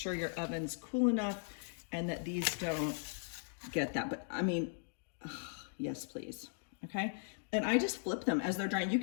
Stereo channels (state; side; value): silent; right; digital silence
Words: your oven's cool enough and that these don't get that. But I mean, yes, please. Okay. And I just flip them as they're drying. You